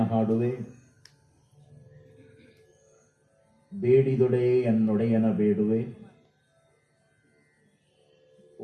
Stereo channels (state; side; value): identical; both; correlation 1.00